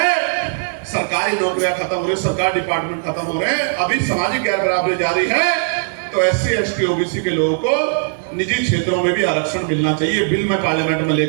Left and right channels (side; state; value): left; silent; 65 dB below the other